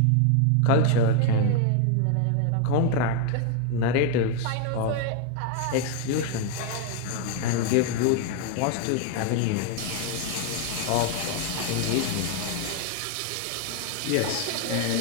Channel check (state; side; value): different; both; correlation 0.00